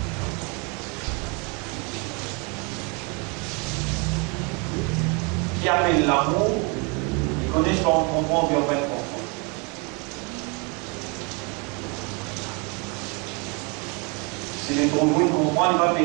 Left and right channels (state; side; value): quieter; left; 31.9 dB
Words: Qui appelle l'amour, ils connaissent pas, on comprend, puis on va comprendre. Si les trop vous comprennent, il va